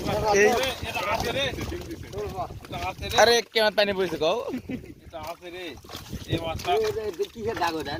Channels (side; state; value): both; identical; correlation 1.00